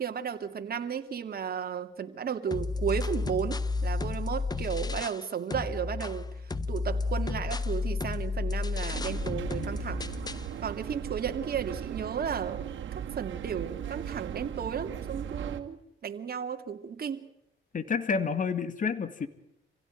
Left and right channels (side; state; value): both; normal; correlation 0.47